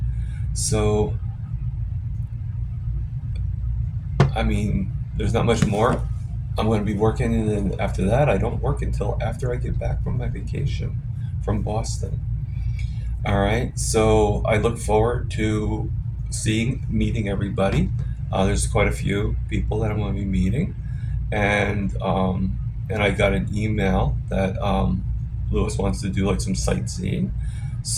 So, I mean, there's not much more. I'm going to be working, and then after that, I don't work until after I get back from my vacation from Boston. All right, so I look forward to meeting everybody. There's quite a few people that I'm going to be meeting, and I got an email that Lewis wants to do like some sightseeing,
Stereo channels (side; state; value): both; identical; correlation 1.00